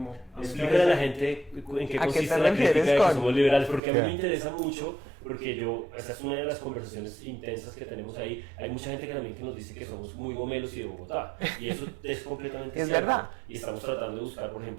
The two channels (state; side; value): drops out; left; at 3.8 s